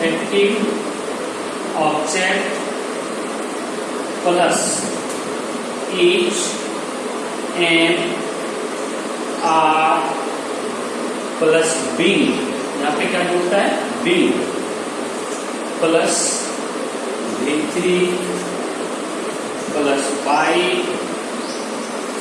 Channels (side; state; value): both; identical; correlation 1.00